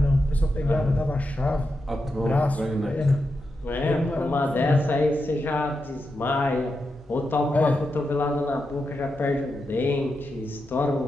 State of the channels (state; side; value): normal; both; correlation 0.87